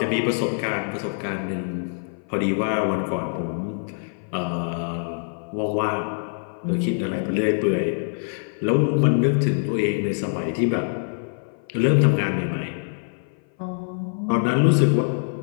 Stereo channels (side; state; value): right; silent; 56 dB below the other